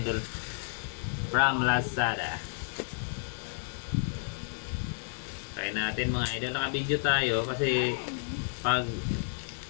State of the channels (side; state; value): right; silent; 57 dB below the other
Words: from Lazada. Try natin mga idol. Naka-video tayo kasi pag